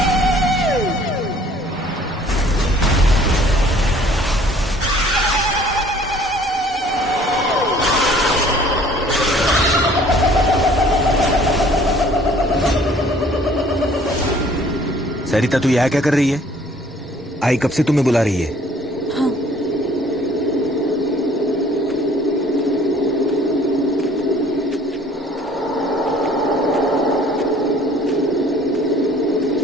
सरिता, तू यहाँ क्या कर रही है? आई कब से तुम्हें बुला रही है?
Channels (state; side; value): normal; both; correlation 0.55